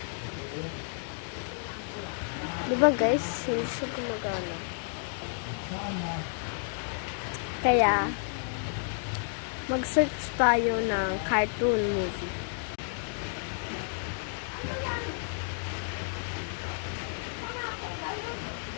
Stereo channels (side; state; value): right; silent; digital silence